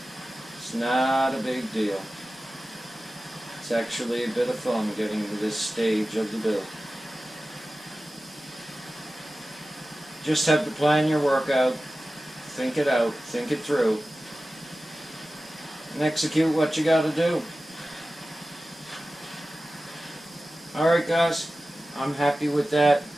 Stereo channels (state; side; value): normal; both; correlation 0.95